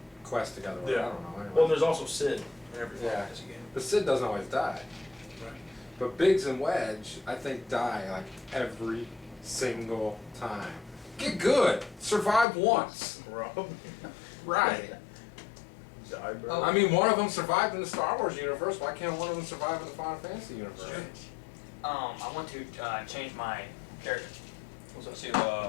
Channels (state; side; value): drops out; right; at 12.5 s